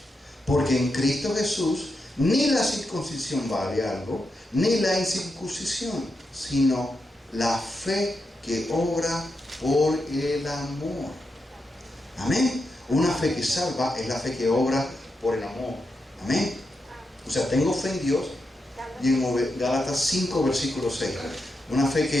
porque en Cristo Jesús ni la circuncisión vale algo, ni la incircuncisión, sino la fe que obra por el amor. Amén. Una fe que salva es la fe que obra por el amor. Amén. O sea, tengo fe en Dios. Y en Gálatas 5, versículo 6. Una fe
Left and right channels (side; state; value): both; normal; correlation 0.86